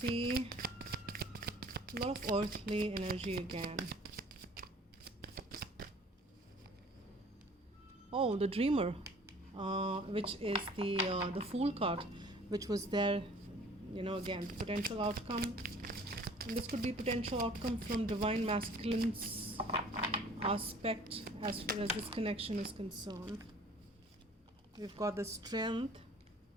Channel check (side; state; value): both; normal; correlation 0.51